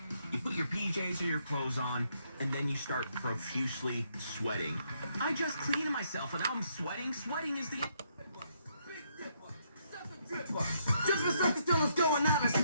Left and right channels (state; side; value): inverted; both; correlation -0.74